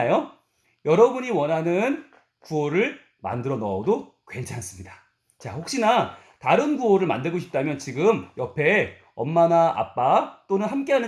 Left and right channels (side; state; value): both; identical; correlation 1.00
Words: 여러분이 원하는 구호를 만들어 넣어도 괜찮습니다. 자, 혹시나 다른 구호를 만들고 싶다면 지금 옆에 엄마나 아빠 또는